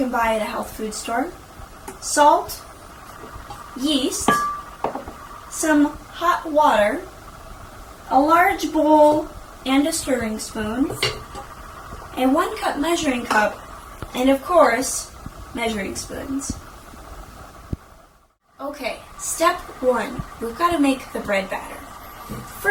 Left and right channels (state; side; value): identical; both; correlation 1.00